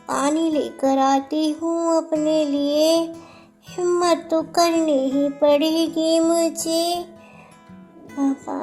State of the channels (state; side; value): identical; both; correlation 1.00